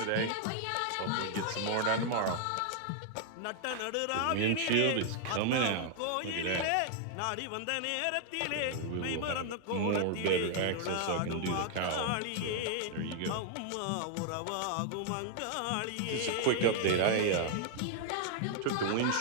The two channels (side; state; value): both; different; correlation 0.00